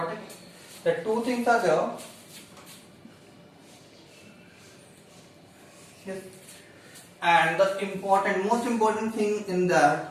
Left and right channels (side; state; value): both; identical; correlation 1.00